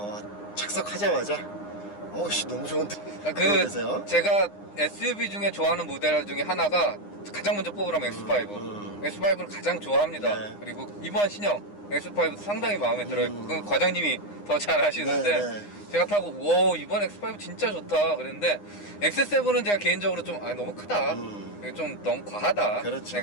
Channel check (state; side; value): late; right; 9.8 ms